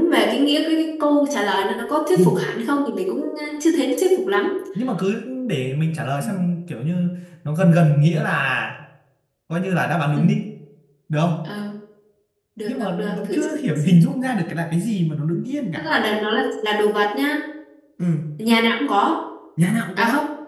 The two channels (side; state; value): both; identical; correlation 1.00